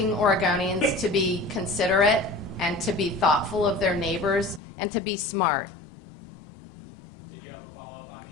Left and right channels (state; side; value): drops out; right; at 4.6 s